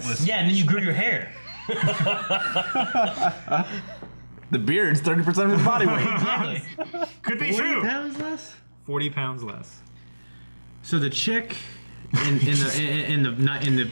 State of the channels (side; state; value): both; inverted; correlation -1.00